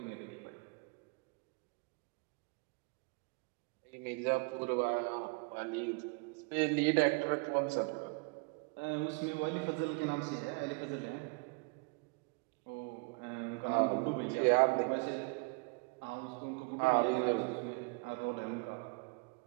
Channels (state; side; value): quieter; left; 31.6 dB